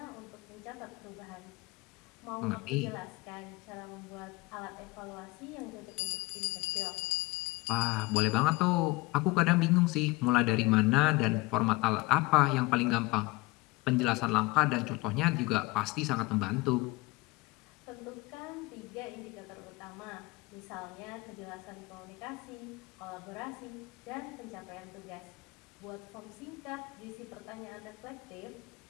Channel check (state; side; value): quieter; right; 22.9 dB